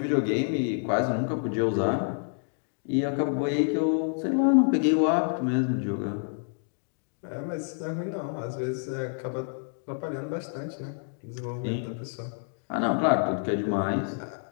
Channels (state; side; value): silent; right; 59 dB below the other